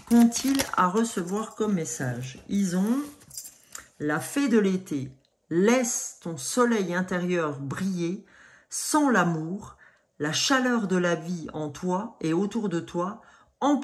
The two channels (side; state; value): both; identical; correlation 1.00